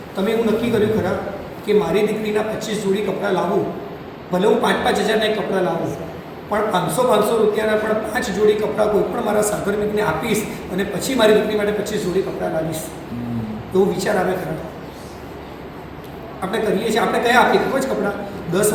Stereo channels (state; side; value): identical; both; correlation 1.00